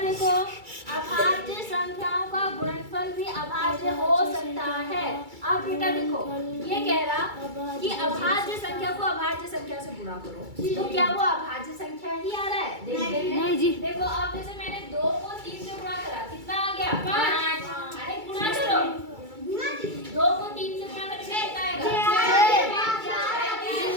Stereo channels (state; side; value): late; left; 2.3 ms